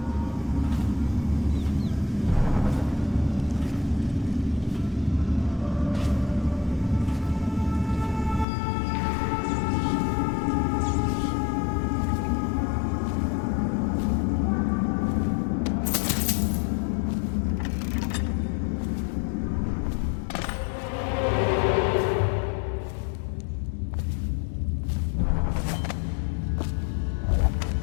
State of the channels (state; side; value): drops out; right; at 8.5 s